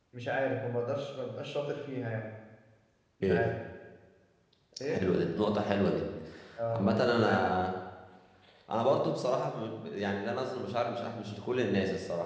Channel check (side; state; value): both; identical; correlation 1.00